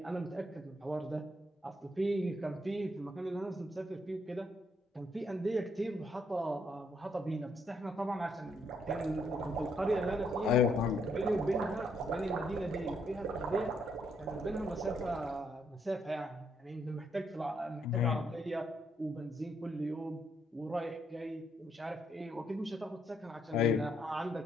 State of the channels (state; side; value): normal; both; correlation 0.74